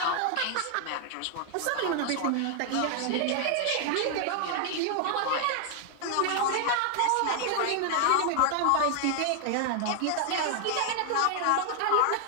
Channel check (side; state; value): both; different; correlation 0.00